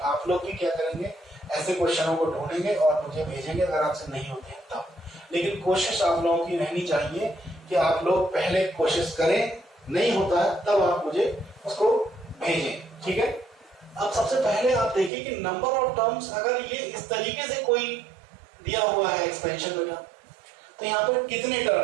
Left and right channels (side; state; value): left; drops out; at 15.1 s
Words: आप लोग भी क्या करेंगे, ऐसे क्वेश्चनों को ढूंढेंगे और मुझे भेजेंगे अगर आपसे नहीं होते हैं तब। लेकिन कोशिश आप लोगों की रहनी चाहिए कि आप लोग पहले कोशिश करें, नहीं होता है तब आप मुझे उसको भेजें। ठीक है, अब सबसे पहले आप देखिए कि नंबर ऑफ टर्म्स अगर ये इस तरीके से कोई दिया हुआ है एक्सपेंशन वगैरह, तो यहाँ पर कितने